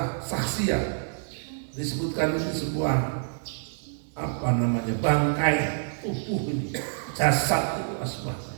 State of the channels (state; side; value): silent; left; digital silence